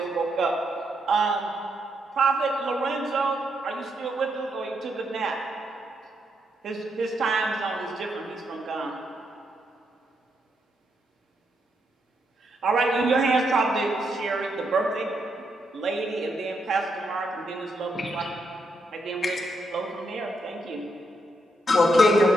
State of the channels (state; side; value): normal; both; correlation 0.79